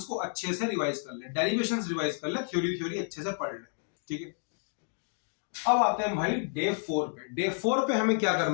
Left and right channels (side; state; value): right; silent; digital silence